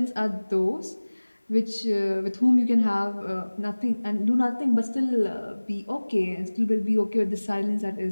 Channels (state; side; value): inverted; both; correlation -1.00